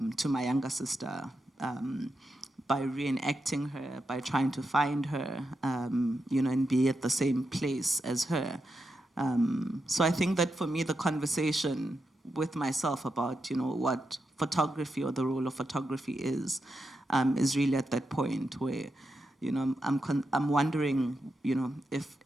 to my younger sister, by reenacting her, by trying to find her, you know, and be at the same place as her. So I think that for me, the conversation with myself about, you know, what photography or the role of photography is really at that point where, you know, I'm wondering, you know,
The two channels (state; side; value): normal; both; correlation 0.86